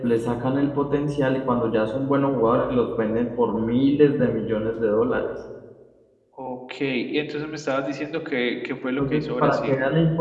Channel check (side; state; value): both; identical; correlation 1.00